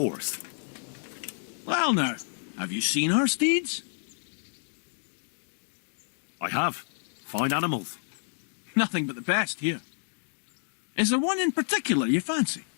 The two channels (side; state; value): right; silent; digital silence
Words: Well now, have you seen our steeds? I have. Fine animals. Nothing but the best here. Is there one in particular you fancy?